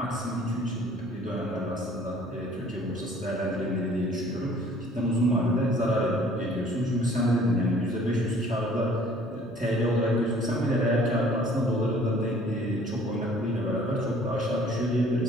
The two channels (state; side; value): normal; both; correlation 0.54